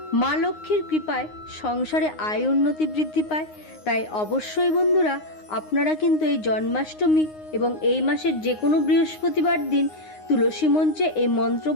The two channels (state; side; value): late; right; 9.6 ms